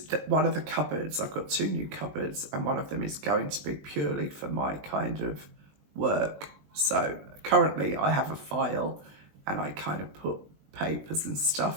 one of the cupboards, I've got 2 new cupboards, and one of them is going to be purely for my kind of work. So currently I have a file, and I kind of put papers and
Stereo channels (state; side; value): late; left; 20 ms